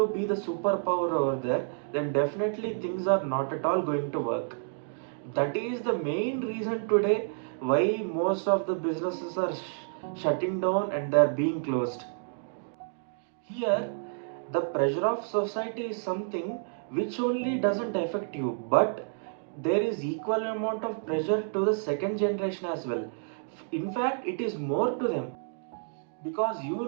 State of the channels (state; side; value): silent; left; digital silence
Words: be the superpower over there, then definitely things are not at all going to work. That is the main reason today why most of the businesses are shutting down and they are being closed. Here, the pressure of society is something which only doesn't affect you, but there is equal amount of pressure to the second generation as well. In fact, it is more to them, because you